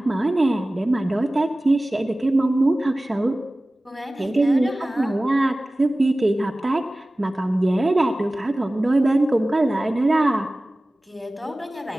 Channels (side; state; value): both; normal; correlation 0.97